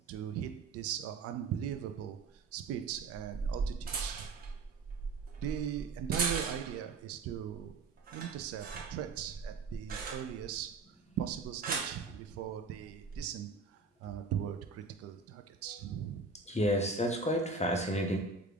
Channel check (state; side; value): quieter; left; 4.0 dB